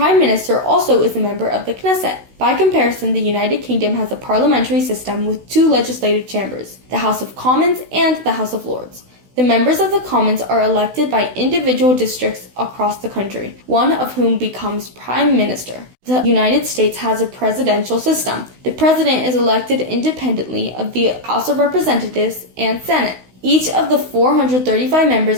Minister also is a member of the Knesset. By comparison, the United Kingdom has a parliamentary system with two legislative chambers, the House of Commons and the House of Lords. The members of the Commons are elected by individual districts across the country, one of whom becomes Prime Minister. The United States has a presidential system. The President is elected independently of the House of Representatives and Senate. Each of the 435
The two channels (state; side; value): late; left; 16 ms